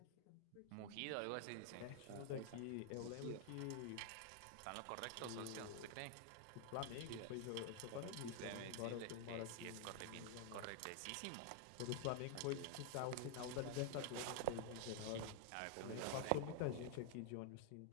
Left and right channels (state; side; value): different; both; correlation 0.00